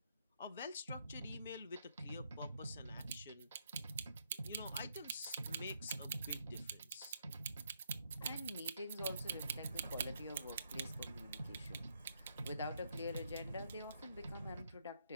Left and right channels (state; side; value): inverted; both; correlation -0.75